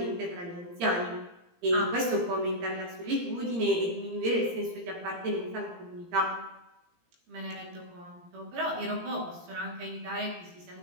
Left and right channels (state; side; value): late; left; 17 ms